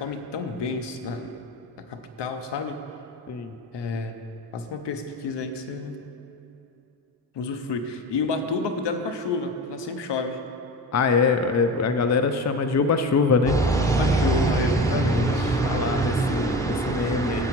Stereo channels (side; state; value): both; normal; correlation 0.29